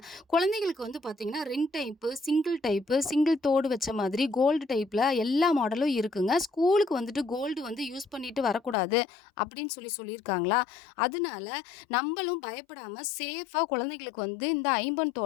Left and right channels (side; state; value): right; drops out; at 8.8 s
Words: குழந்தைகளுக்கு வந்து பார்த்தீங்கன்னா ரிங் டைப்பு, சிங்கிள் தோடு வச்ச மாதிரி கோல்டு டைப்பில் எல்லா மாடலும் இருக்குங்க. ஸ்கூலுக்கு வந்துட்டு கோல்டு வந்து யூஸ் பண்ணிட்டு வரக்கூடாது அப்படின்னு சொல்லியிருக்காங்களா, அதனால நம்மளும் பயப்படாமல் சேஃபாக குழந்தைகளுக்கு வந்து இந்த ஐம்பொன்